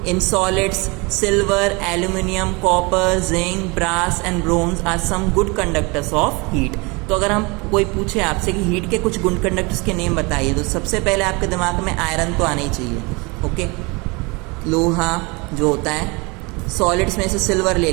in solids silver, aluminium, copper, zinc, brass and bronze are some good conductors of heat. तो अगर हम कोई पूछे आपसे कि हीट के कुछ गुड कंडक्टर्स के नेम बताइए, तो सबसे पहले आपके दिमाग में आयरन तो आना ही चाहिए। ओके, लोहा जो होता है, सॉलिड्स में से सिल्वर ले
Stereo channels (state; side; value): quieter; left; 27.5 dB